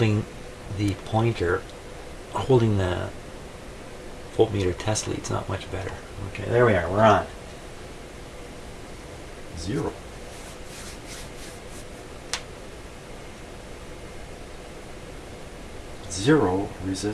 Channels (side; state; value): both; identical; correlation 1.00